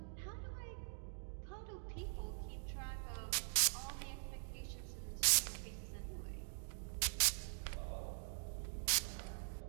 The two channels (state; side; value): silent; left; digital silence